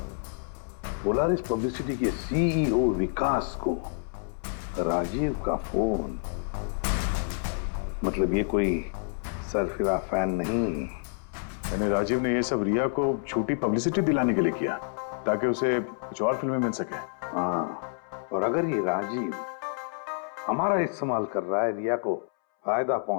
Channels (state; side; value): silent; right; 59 dB below the other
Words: पोलारिस पब्लिसिटी के सीईओ विकास को राजीव का फोन। मतलब ये कोई सरफिरा फैन नहीं। यानी राजीव ने ये सब रिया को झूठी पब्लिसिटी दिलाने के लिए किया ताकि उसे कुछ और फिल्में मिल सके। हाँ, और अगर ये राजीव हमारा इस्तेमाल कर रहा है रिया को फायदा